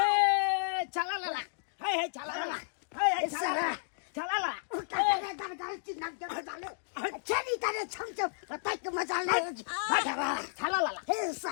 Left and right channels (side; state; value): right; silent; digital silence